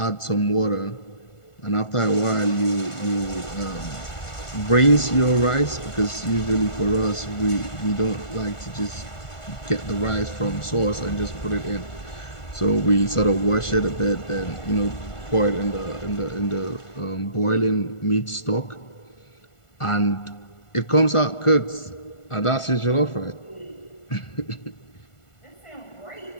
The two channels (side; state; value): right; late; 1.4 ms